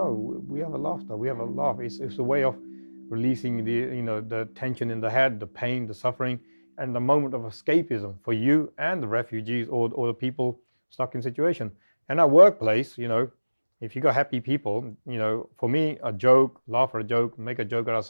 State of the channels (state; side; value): inverted; both; correlation -1.00